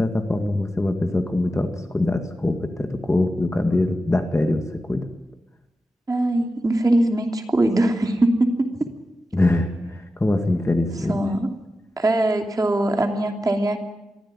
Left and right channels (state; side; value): normal; both; correlation 0.91